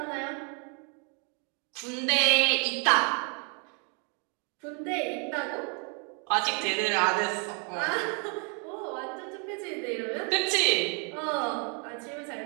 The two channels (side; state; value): left; quieter; 37.1 dB